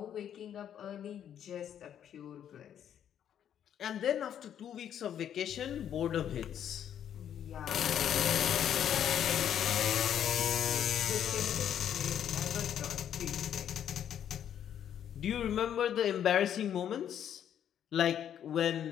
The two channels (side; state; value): right; quieter; 9.6 dB